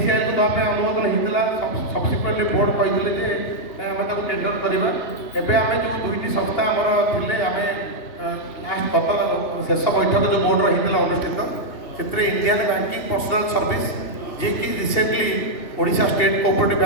ଦେବା ପାଇଁ ଅନୁମୋଦନ ହେଇଥିଲା। ସବସିକ୍ୱେଣ୍ଟଲି ବୋର୍ଡ଼ କହିଥିଲେ ଯେ ଆମେ ତାକୁ ଟେଣ୍ଡର କରିବା। ଏବେ ଆମେ ଯେଉଁ 2ଟି ସଂସ୍ଥା ଆମର ଥିଲେ ଆମେ ଲାଷ୍ଟ ଶେଷ ବୈଠକ ଯେଉଁ ବୋର୍ଡ଼ର ହେଇଥିଲା ଅନୁଷ୍ଠିତ ସେଥିରେ ଇଣ୍ଡିଆନ୍ ବ୍ୟାଙ୍କିଂ ପର୍ସନାଲ ସର୍ଭିସ୍ ଯିଏକି ରିସେଣ୍ଟଲି ଓଡ଼ିଶା ଷ୍ଟେଟ୍ କୋଅପରେଟିଭ୍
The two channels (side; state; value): right; late; 2.8 ms